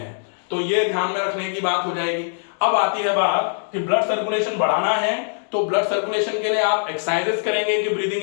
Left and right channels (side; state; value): right; silent; digital silence